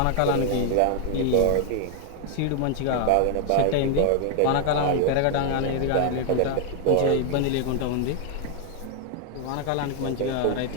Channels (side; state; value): both; different; correlation 0.00